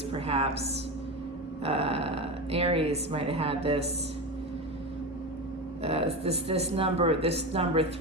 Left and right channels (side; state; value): both; normal; correlation 0.21